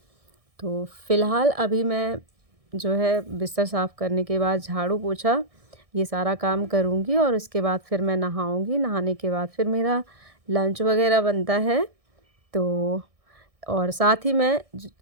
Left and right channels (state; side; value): late; left; 1.6 ms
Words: तो फ़िलहाल अभी मैं जो है बिस्तर साफ़ करने के बाद झाड़ू-पोछा ये सारा काम करूँगी और उसके बाद फिर मैं नहाऊँगी। नहाने के बाद फिर मेरा लंच वग़ैरह बनता है। तो और साथ ही मैं